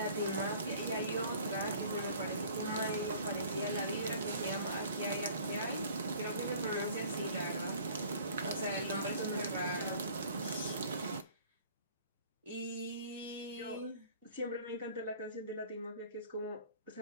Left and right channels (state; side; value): inverted; both; correlation -0.51